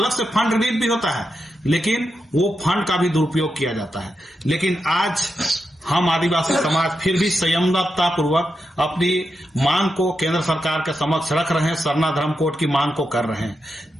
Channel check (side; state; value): both; normal; correlation 0.87